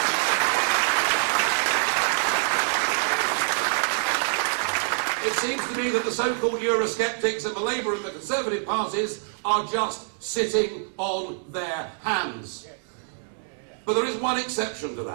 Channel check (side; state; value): left; silent; digital silence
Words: that the so-called Eurosceptics and the Labour and the Conservative parties are just sitting on their hands. But there is one exception to